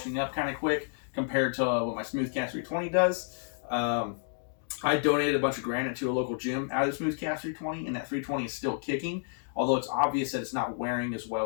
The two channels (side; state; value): right; silent; digital silence